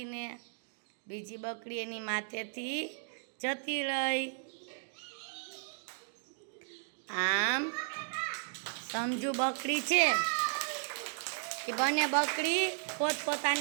બીજી બકરી એની માથેથી જતી રહી. આમ સમજુ બકરી છે એ બંને બકરી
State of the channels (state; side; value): silent; left; digital silence